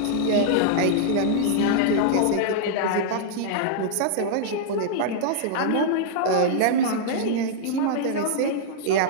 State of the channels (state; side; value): different; both; correlation -0.01